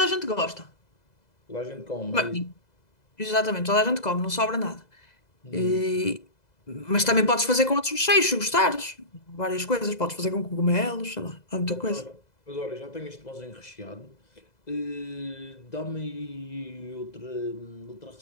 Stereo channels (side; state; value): right; late; 2.0 ms